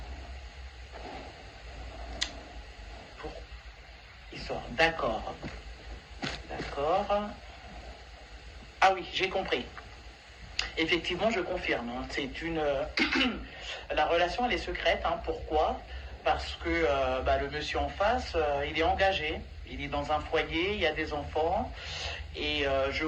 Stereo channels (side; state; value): both; identical; correlation 1.00